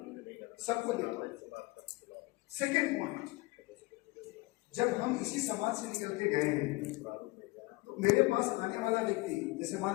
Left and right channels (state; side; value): quieter; right; 22.3 dB